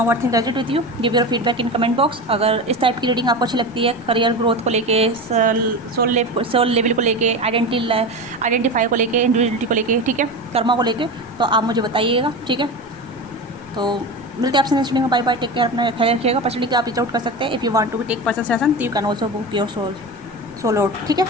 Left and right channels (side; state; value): right; noise; rumble, 29 dB below the sound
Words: what think resonate with you, give your feedback in comment box. अगर इस टाइप की रीडिंग आपको अच्छी लगती है, करियर ग्रोथ को लेके, सोल लेवल को लेके, आइडेंटिफाई को लेके, इंडिविजुअलिटी को लेके, ठीक है, कर्मा को लेके, तो आप मुझे बताइएगा। ठीक है, तो मिलते हैं आपसे नेक्स्ट वीडियो में। बाय बाय, टेक केयर, अपना ख्याल रखिएगा। पर्सनली आप रीच आउट कर सकते हैं। If you want to take personal session तो you can also book your soul out. ठीक है,